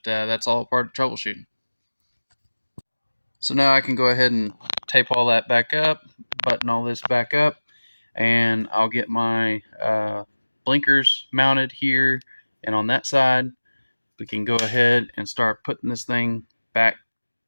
that's all part of troubleshooting. So now I can go ahead and tape all that back up, button all this back up, and I'll get my blinkers mounted here and on that side. We can go ahead and start putting this thing back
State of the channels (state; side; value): inverted; both; correlation -1.00